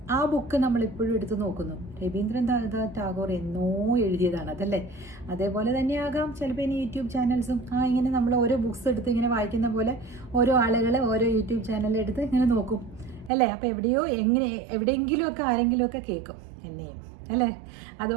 ആ ബുക്ക് നമ്മളിപ്പോഴും എടുത്ത് നോക്കുന്നു. രവീന്ദ്രനാഥ് ടാഗോർ എന്നോ എഴുതിയതാണ് അതല്ലേ. അതേപോലെ തന്നെയാകാം ചിലപ്പോൾ ഇനി യൂട്യൂബ് ചാനൽസും ഇങ്ങനെ നമ്മൾ ഓരോ ബുക്സ് എടുത്ത് ഇങ്ങനെ വായിക്കുന്ന പോലെ ഓരോ ആളുകൾ ഓരോ യൂട്യൂബ് ചാനൽ എടുത്ത് ഇങ്ങനെ നോക്കും അല്ലേ. അപ്പോൾ എവിടെയെങ്കിലുമൊക്കെ ആരെങ്കിലുമൊക്കെ കേൾക്കും എന്നെയും അല്ലേ.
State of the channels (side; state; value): left; drops out; at 13.3 s